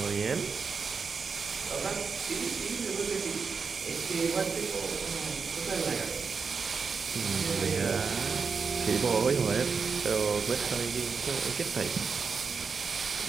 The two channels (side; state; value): left; quieter; 5.4 dB